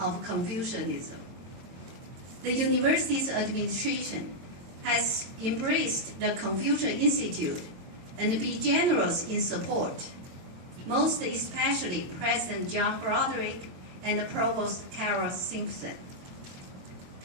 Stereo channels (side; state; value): left; late; 22 ms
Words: Confucianism. The university's administration has embraced the Confucius Institute and be generous in support, most especially President John Broderick and Provost Carol Simpson.